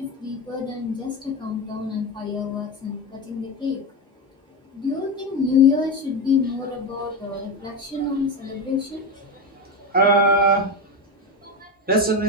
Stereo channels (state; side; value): normal; both; correlation 0.16